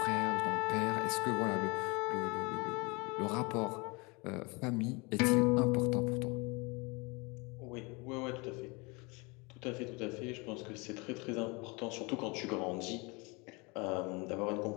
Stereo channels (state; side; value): quieter; right; 28.0 dB